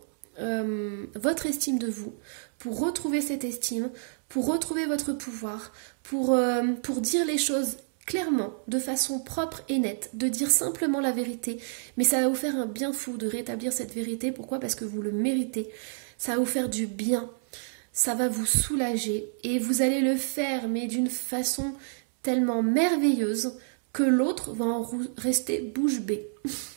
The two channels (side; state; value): left; silent; 59 dB below the other